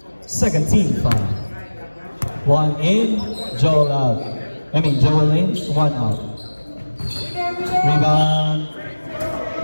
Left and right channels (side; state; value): both; inverted; correlation -1.00